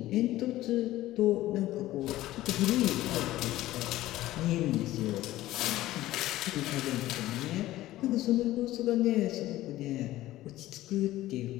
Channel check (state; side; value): quieter; right; 15.7 dB